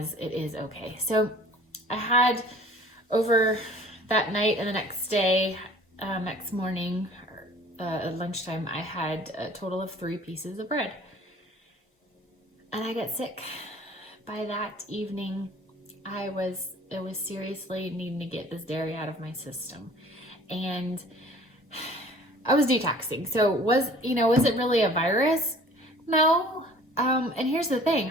it is okay. So I had over that night and the next day, next morning, at lunchtime, I had a total of 3 pieces of bread. And I got sick. By that evening, it was seriously needing to get this dairy out of my system. and I was detoxing. So was it really a virus? No. And here's the thing.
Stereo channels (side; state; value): both; normal; correlation 0.49